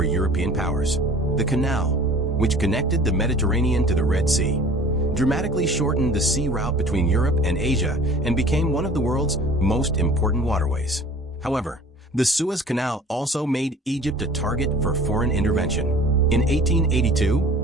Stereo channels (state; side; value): normal; both; correlation 0.46